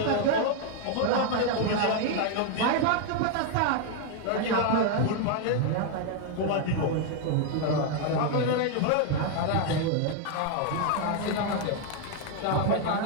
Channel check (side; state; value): both; different; correlation 0.00